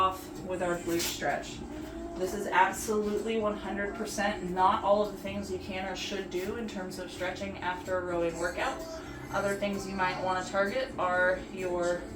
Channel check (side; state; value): both; identical; correlation 1.00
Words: with our glute stretch. This is absolutely 100% not all of the things you can or should do in terms of stretching after a rowing workout. Other things you might want to target are your